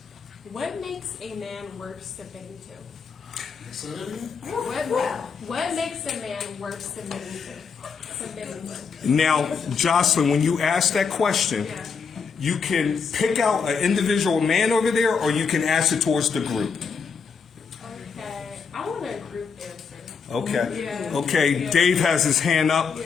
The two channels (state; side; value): quieter; right; 5.7 dB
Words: What makes a man worth submitting to? Say that again? What makes a man worth submitting to? Now, Jocelyn, when you ask that question, Yeah. you can pick out an individual man over there, or you can ask it towards the group. Okay, I want a group answer. Okay. Yeah. Okay, Yeah. Dave has his hand up.